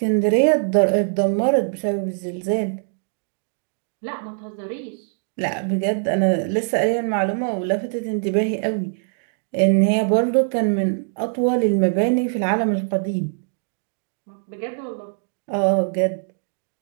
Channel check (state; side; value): silent; left; digital silence